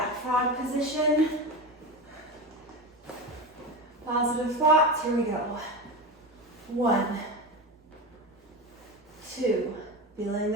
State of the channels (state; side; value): normal; both; correlation 0.23